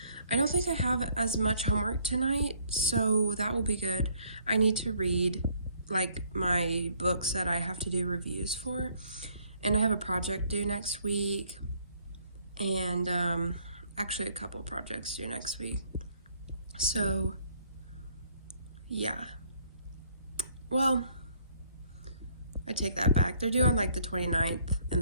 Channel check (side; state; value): both; inverted; correlation -0.64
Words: don't think I have as much homework tonight, so that will be good. I need to read like my books that I have to do reviews for, and I have a project due next week, and actually a couple projects due next week. So yeah, well, I take that back. They're due on like the 29th